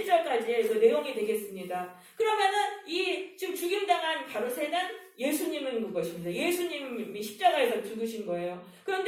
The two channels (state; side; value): identical; both; correlation 1.00